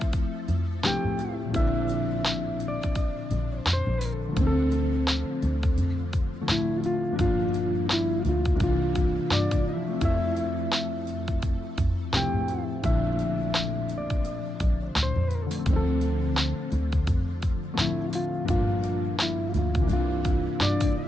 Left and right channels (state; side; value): normal; both; correlation 0.86